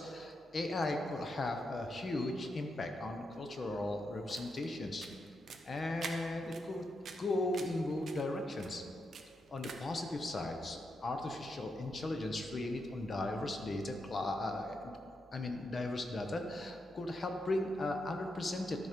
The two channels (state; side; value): normal; both; correlation 0.84